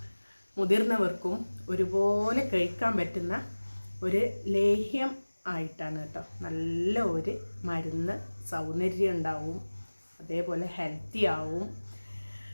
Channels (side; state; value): both; inverted; correlation -1.00